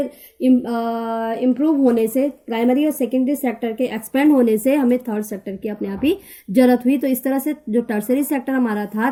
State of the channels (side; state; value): both; identical; correlation 1.00